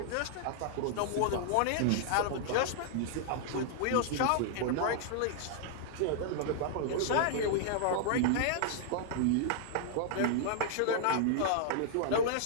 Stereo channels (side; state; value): both; different; correlation -0.01